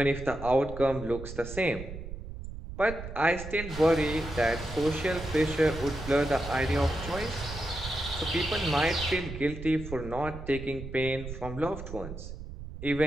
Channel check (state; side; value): noise; right; rumble, 10 dB below the sound